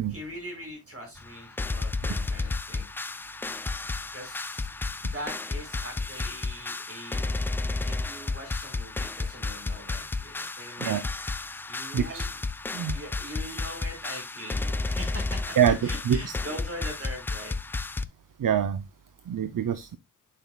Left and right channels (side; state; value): both; normal; correlation 0.34